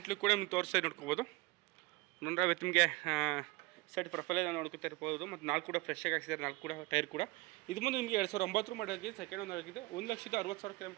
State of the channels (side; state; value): left; quieter; 22.7 dB